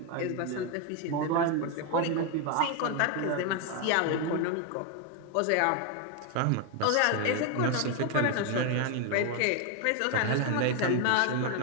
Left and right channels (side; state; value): both; different; correlation 0.01